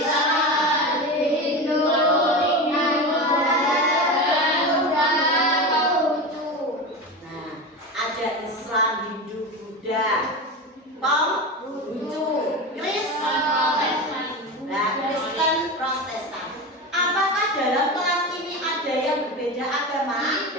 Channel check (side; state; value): both; normal; correlation 0.23